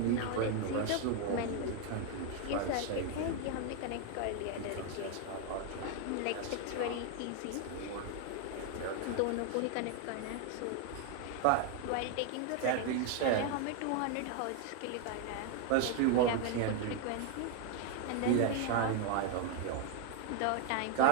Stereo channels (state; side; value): different; both; correlation 0.01